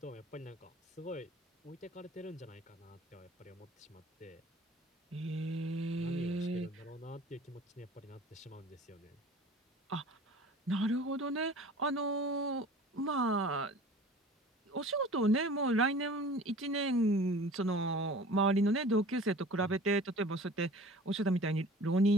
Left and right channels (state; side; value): normal; both; correlation 0.44